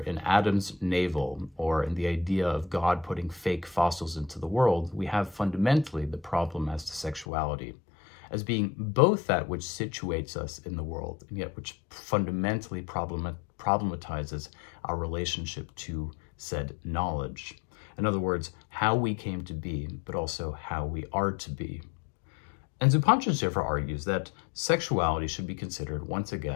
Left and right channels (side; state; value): right; drops out; at 7.2 s